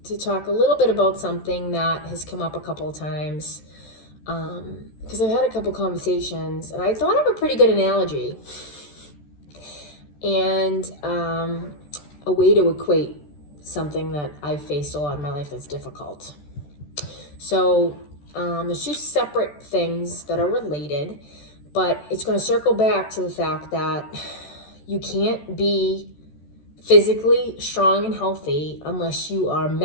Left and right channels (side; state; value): right; late; 14 ms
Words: to talk a little bit about something that has come up a couple of times because I've had a couple conversations and I thought of a pretty good analogy and a way to equate something that I've faced a lot in my life that's difficult. So there's two separate things that are related, but it's going to circle back to the fact that you can't be physically strong and healthy unless you are